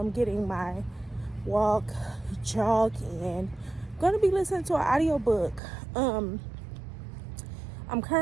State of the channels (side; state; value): left; drops out; at 5.6 s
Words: getting my jog in, I'm going to be listening to an audiobook. I'm